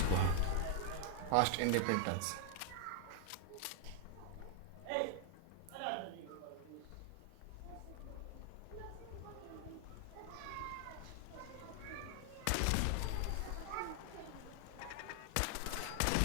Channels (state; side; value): different; both; correlation 0.00